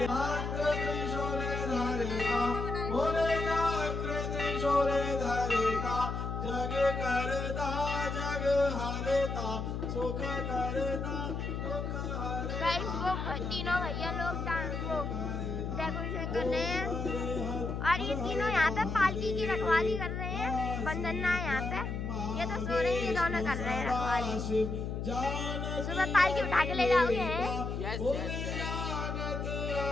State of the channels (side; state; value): left; noise; hum, 3 dB below the sound